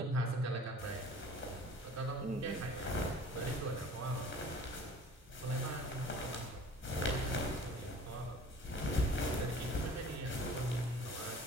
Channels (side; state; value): both; normal; correlation 0.46